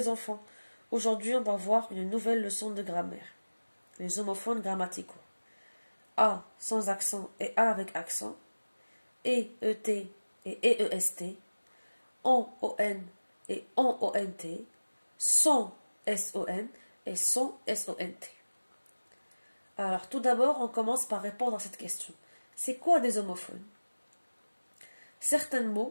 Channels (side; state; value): both; inverted; correlation -1.00